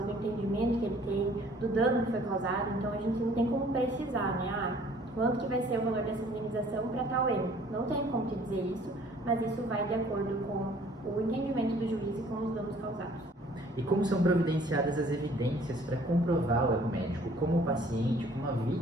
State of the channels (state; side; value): normal; both; correlation 0.56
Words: do entendimento que ele tem, do dano que foi causado, então a gente não tem como precisar, né, quanto que vai ser o valor dessa indenização para tal erro. Não tem como te dizer isso, mas isso vai de acordo com o entendimento do juiz e com os danos causados. E como são providenciadas as evidências para comprovar o erro médico? Como o paciente, como a